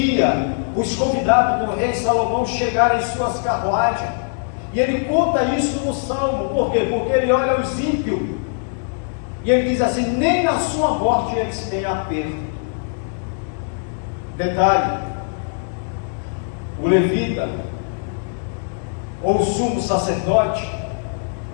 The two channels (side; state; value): right; silent; digital silence